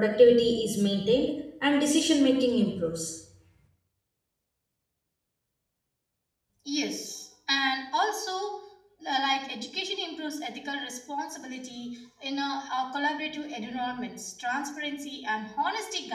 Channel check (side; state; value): both; identical; correlation 1.00